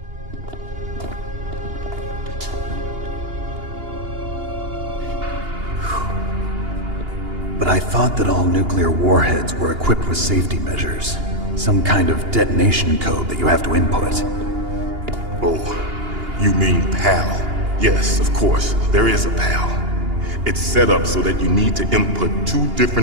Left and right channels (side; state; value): left; late; 2.8 ms